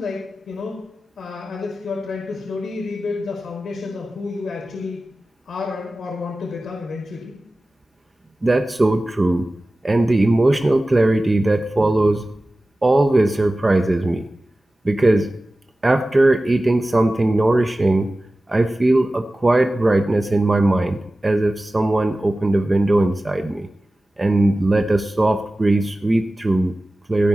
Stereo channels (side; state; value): both; normal; correlation 0.96